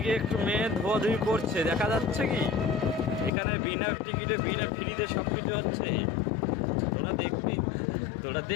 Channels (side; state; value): right; drops out; at 3.3 s